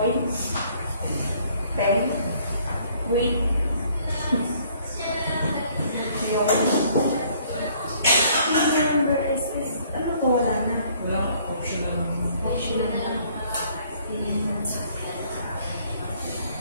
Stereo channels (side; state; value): both; inverted; correlation -0.61